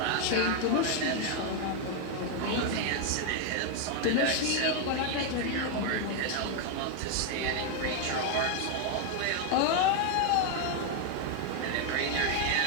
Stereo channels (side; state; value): both; different; correlation 0.01